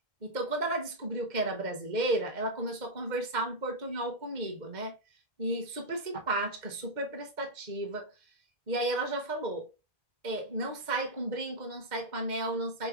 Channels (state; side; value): late; left; 2.1 ms